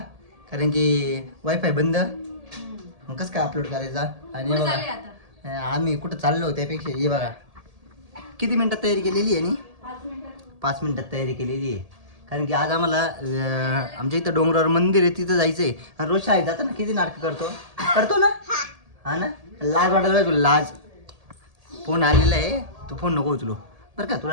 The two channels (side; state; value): left; late; 1.8 ms